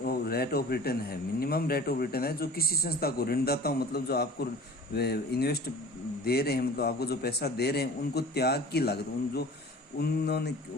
rate of return है, मिनिमम रेट ऑफ रिटर्न है जो किसी संस्था को ऋणदाताओं जो आपको इन्वेस्ट दे रहे हैं, आपको जो पैसा दे रहे हैं उनको त्याग की लागत उन्होंने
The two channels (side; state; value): both; normal; correlation 0.42